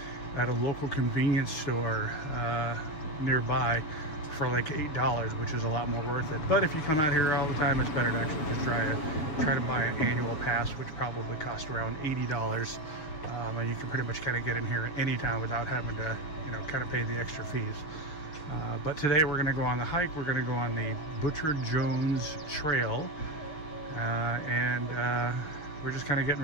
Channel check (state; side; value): late; right; 6.5 ms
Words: at a local convenience store nearby for like $8, which is a lot more worth it. But if you come out here all the time, it's better to actually just try to buy an annual pass, which probably costs around $80. And you can pretty much kind of get in here anytime without having to, kind of pay the extra fees. But today we're going to go on the hike. We're going to go on the Butcher Jones Trail, and we're just kind of getting